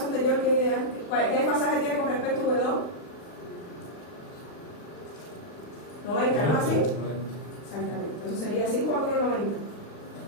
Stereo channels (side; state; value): right; late; 40 ms